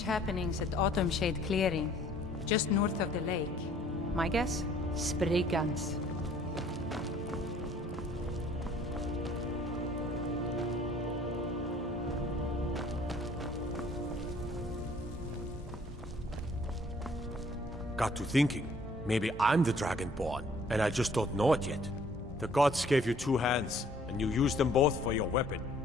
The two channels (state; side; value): normal; both; correlation 0.58